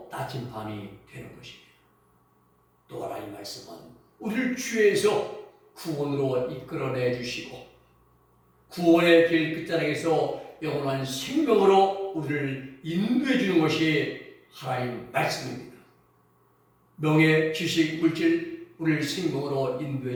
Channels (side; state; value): both; identical; correlation 1.00